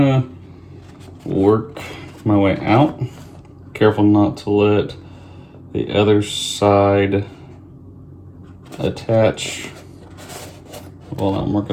of work my way out. Careful not to let the other side attach while I'm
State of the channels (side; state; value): both; identical; correlation 1.00